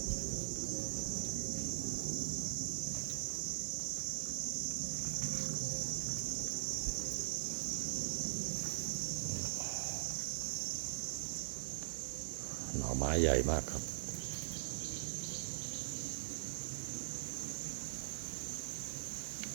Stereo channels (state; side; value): silent; left; 50 dB below the other